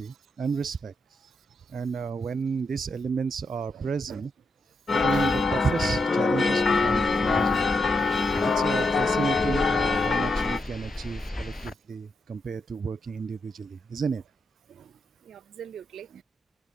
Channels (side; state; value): both; normal; correlation 0.83